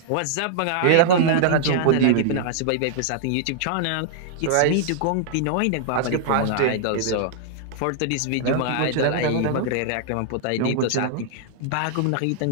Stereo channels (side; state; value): both; different; correlation -0.01